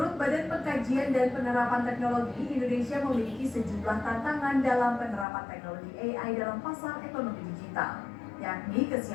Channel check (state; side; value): drops out; right; at 5.2 s